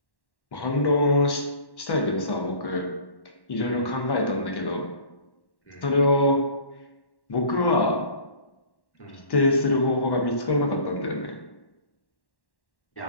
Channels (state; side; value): late; right; 1.1 ms